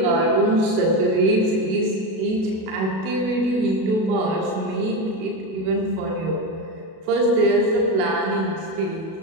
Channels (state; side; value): late; left; 37 ms